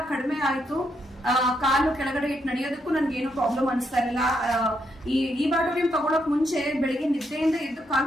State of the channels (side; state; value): both; normal; correlation 0.78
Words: ಕಡಿಮೆ ಆಯ್ತು. ಕಾಲು ಕೆಳಗಡೆ ಇಟ್ಟು ನಡೆಯೋದಕ್ಕೂ ನನ್ಗೆ ಏನು ಪ್ರಾಬ್ಲಮ್ ಅನಿಸ್ತಾ ಇರಲಿಲ್ಲ. ಈ ಇಬಯೋಟೋರಿಯಂ ತಗೊಳಕ್ ಮುಂಚೆ ಬೆಳಿಗ್ಗೆ ನಿದ್ದೆಯಿಂದ ಎದ್ದು